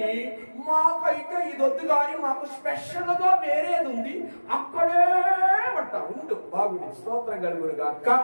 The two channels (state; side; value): inverted; both; correlation -1.00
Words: మాకైతే ఇది వద్దు కానీ మాకు స్పెషల్ గా వేరేది ఉంది అక్కడే పట్ట ఉండు బాగుంది. స్తోత్రం కలుగునుగా అక్క.